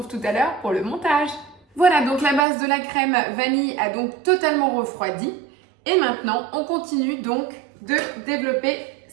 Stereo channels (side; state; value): left; drops out; at 2.4 s